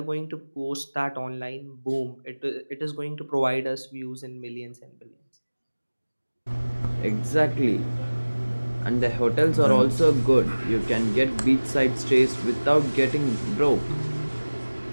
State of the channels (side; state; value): both; inverted; correlation -1.00